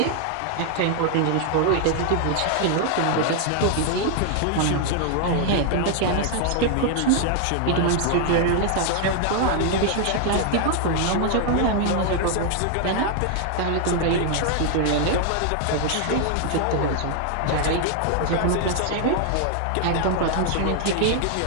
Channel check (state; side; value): different; both; correlation 0.00